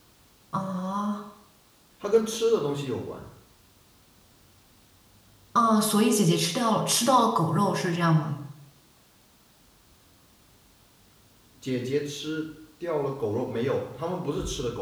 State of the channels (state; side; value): identical; both; correlation 1.00